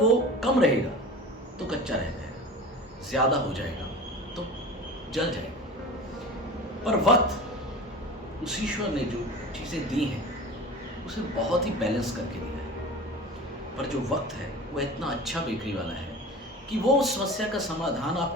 कम रहेगा तो कच्चा रह जाएगा, ज़्यादा हो जाएगा तो जल जाएगा। पर वक्त, उस ईश्वर ने जो चीज़ें दी हैं उसे बहुत ही बैलेंस करके दिया है। पर जो वक्त है वो इतना अच्छा बेकरी वाला है कि वो उस समस्या का समाधान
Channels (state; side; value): normal; both; correlation 0.35